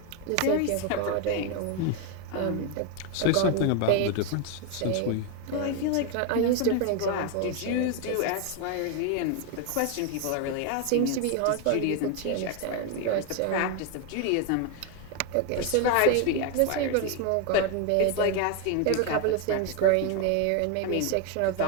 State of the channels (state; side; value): different; both; correlation 0.01